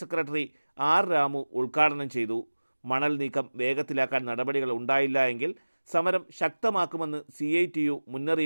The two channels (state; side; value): inverted; both; correlation -1.00